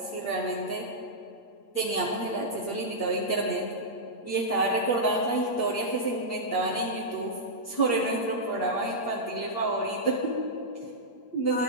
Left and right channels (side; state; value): right; late; 8.6 ms